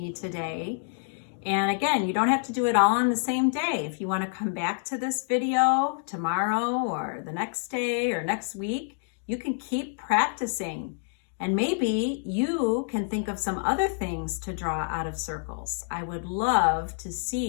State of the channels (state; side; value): silent; right; digital silence